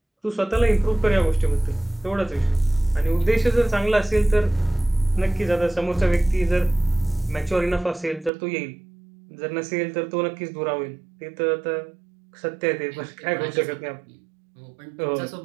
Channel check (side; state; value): left; drops out; at 8.3 s